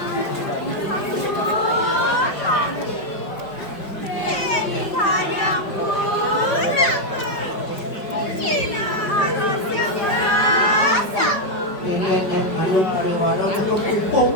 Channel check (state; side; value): late; right; 5.4 ms